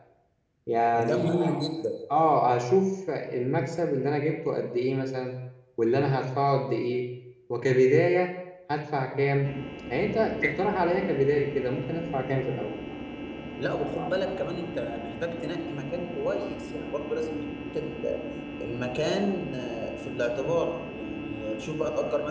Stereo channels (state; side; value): identical; both; correlation 1.00